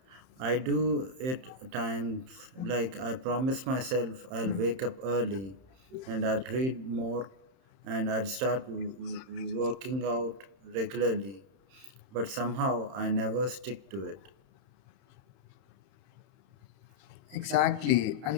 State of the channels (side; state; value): left; late; 31 ms